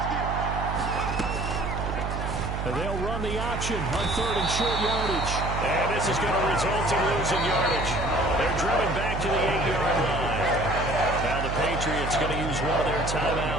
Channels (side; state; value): right; noise; hum, 4 dB below the sound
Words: And they'll run the option on 3rd and short yardage. And this is going to result in losing yardage. They're driven back to the 8-yard line. Now the Patriots going to use one of their